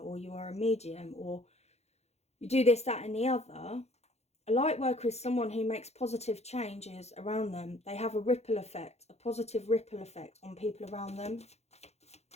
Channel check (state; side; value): late; right; 0.31 ms